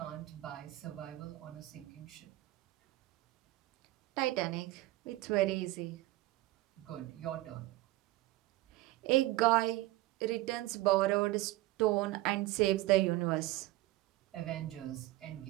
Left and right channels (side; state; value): left; quieter; 17.5 dB